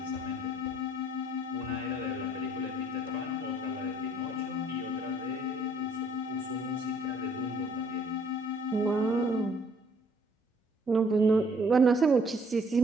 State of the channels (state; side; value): normal; both; correlation 0.61